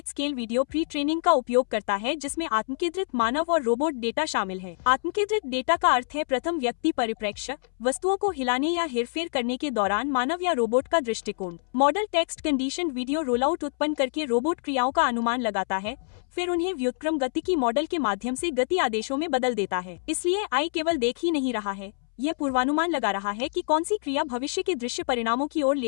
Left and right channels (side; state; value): right; silent; 61 dB below the other